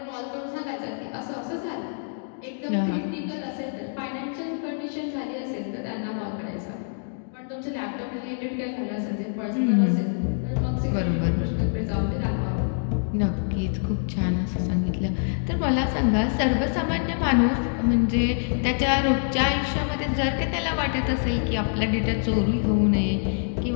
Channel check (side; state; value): right; silent; digital silence